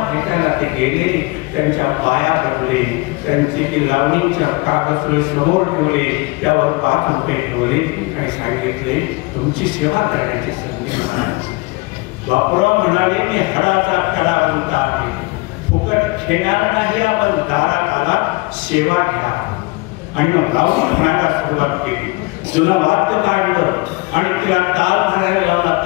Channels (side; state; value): right; quieter; 25.4 dB